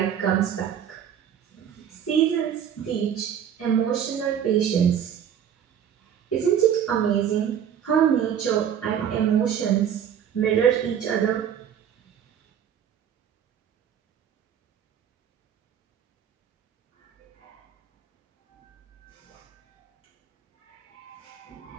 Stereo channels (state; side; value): quieter; left; 8.9 dB